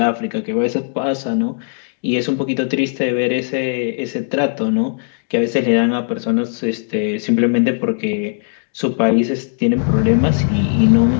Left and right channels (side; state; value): right; silent; digital silence